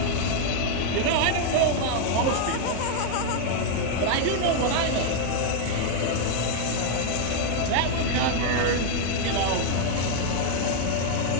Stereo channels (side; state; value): both; different; correlation 0.00